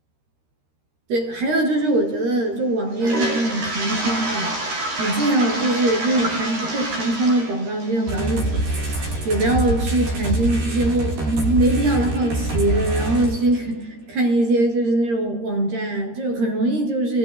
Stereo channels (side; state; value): left; late; 13 ms